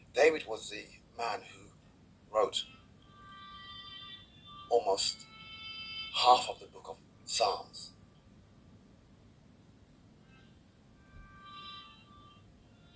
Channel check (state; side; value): identical; both; correlation 1.00